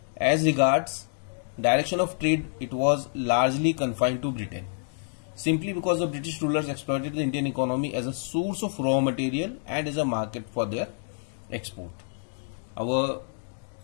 As regards direction of trade, it was largely confined to Britain, simply because the British rulers exploited the Indian economy as a source of raw material and as a market for their export. Our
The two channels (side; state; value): right; silent; digital silence